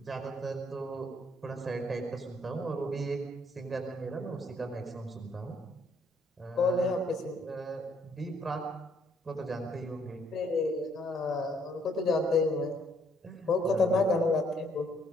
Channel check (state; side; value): normal; both; correlation 0.67